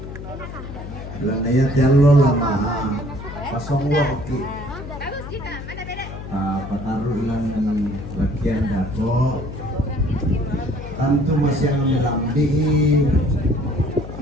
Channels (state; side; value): noise; left; hum, 10 dB below the sound